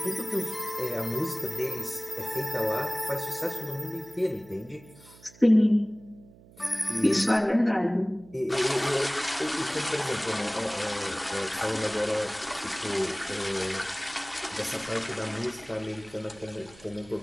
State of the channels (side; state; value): right; noise; hum, 23 dB below the sound